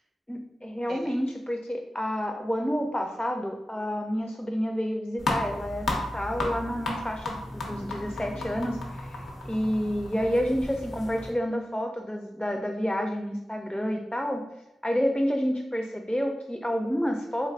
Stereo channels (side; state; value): both; normal; correlation 0.94